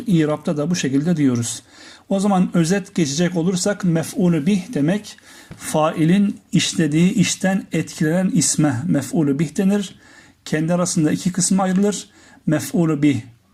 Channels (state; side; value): identical; both; correlation 1.00